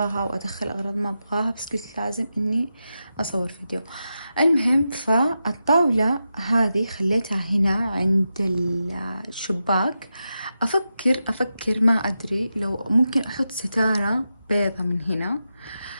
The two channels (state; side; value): inverted; both; correlation -0.89